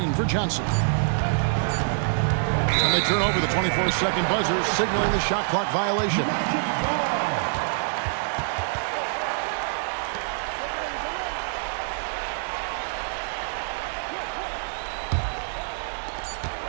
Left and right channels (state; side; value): silent; left; digital silence